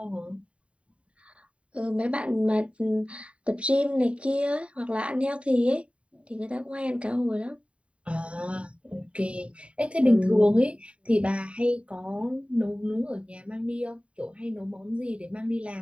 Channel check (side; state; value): left; late; 0.062 ms